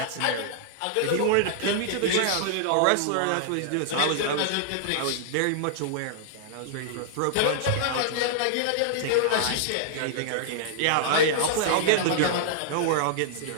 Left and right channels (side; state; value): both; different; correlation -0.01